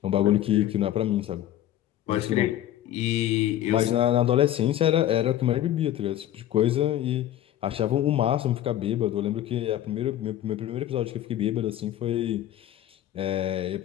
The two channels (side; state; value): right; quieter; 12.4 dB